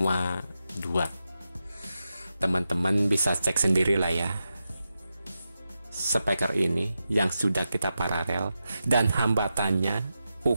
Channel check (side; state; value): both; inverted; correlation -0.89